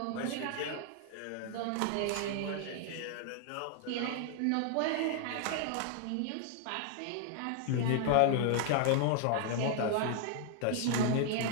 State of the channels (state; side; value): different; both; correlation 0.00